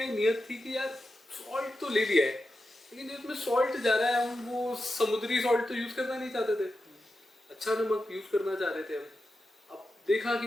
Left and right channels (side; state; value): both; normal; correlation 0.90